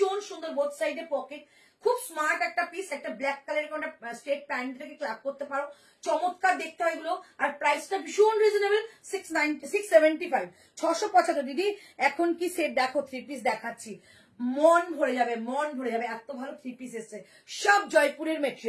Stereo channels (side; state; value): both; identical; correlation 1.00